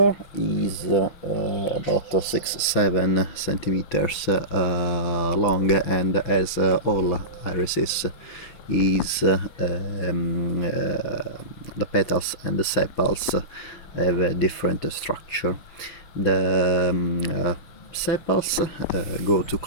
is about 6-7 centimeters long, and as all irises is the petals and the sepals have a different structure. The sepals go to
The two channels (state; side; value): late; right; 5.7 ms